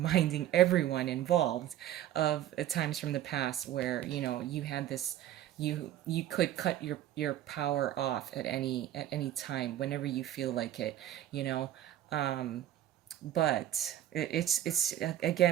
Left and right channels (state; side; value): quieter; left; 12.4 dB